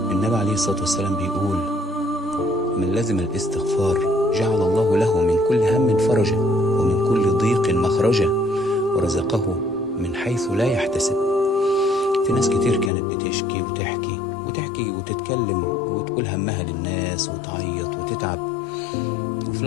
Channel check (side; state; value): right; drops out; at 12.9 s